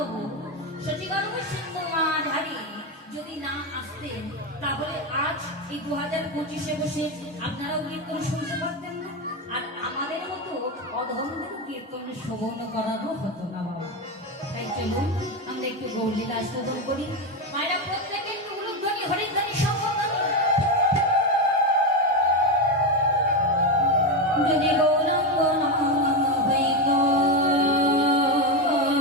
সচিগর্ভ সিন্ধু মাঝারি যদি না আসতেন তাহলে আজ এই 2025-এ বসে আপনারাও কীর্তন শুনতে পারতেন না, আর আমাদের মতো অধমদের কীর্তন শ্রবণ করানো হতো না বাবা। তাই চলুন আমরা একটু গৌরলীলা আস্বাদন করি। মায়েরা প্রত্যেকে একটু উলুধ্বনি হরিধ্বনি সম্বোধন। যদি গৌরাঙ্গ না হইত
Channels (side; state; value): both; normal; correlation 0.11